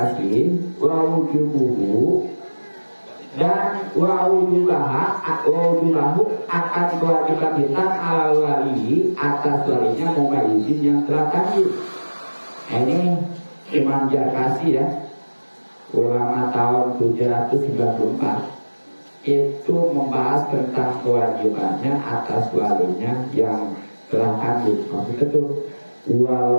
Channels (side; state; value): both; inverted; correlation -1.00